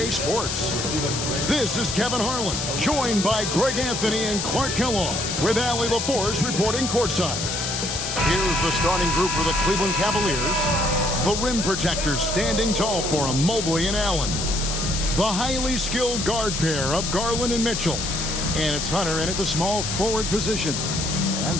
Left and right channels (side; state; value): left; noise; hiss, 3 dB below the sound